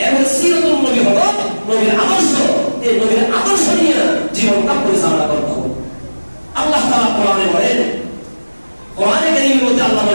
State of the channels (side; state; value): both; inverted; correlation -1.00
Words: এর সিরাতুন নবী হলো নবীর আদর্শ, এই নবীর আদর্শ নিয়ে জীবনটা পরিচালনা করতে হবে। আল্লাহ তাআলা কোরআনে বলেন, কোরআনে কারীমের মধ্যে আল্লাহ